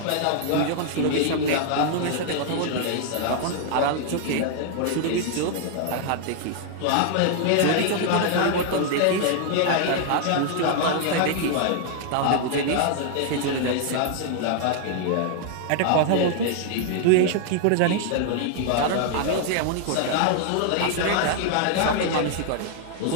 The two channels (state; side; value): different; both; correlation 0.00